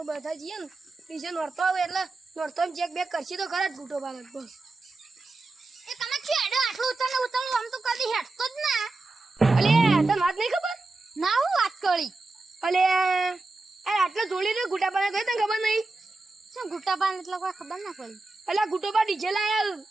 બધા જઈએ ને ડીજે નોરતો આવે એટલે નોરતો ચેક બેક કરશે તો ખરા જ ગુટો બાલક બસ એ તમે છેડો આટલું ઉતરનું આમ તો કદી હેડતો જ ના અલે તને વાત નહીં ખબર ના હું વાત કરી અલે અરે આટલા જોડી ને ગુટા બાલક તને ખબર નહીં શું ગુટ્ટા પાન એટલે કોઈ ખબર ના પડી અલા ગુટો બા ડીજે લાયા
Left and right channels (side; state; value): left; quieter; 3.3 dB